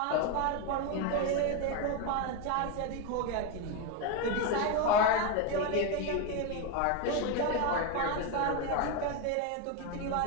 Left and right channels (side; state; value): both; different; correlation 0.03